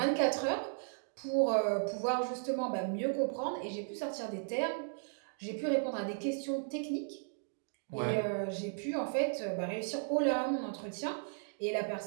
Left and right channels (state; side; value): silent; left; digital silence